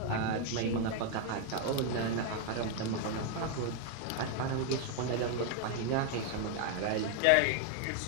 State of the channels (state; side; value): different; both; correlation 0.01